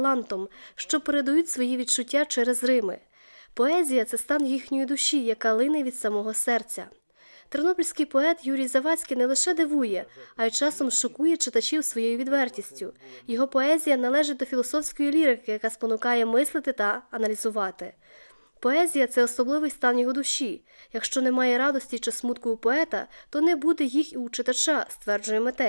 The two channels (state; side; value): inverted; both; correlation -1.00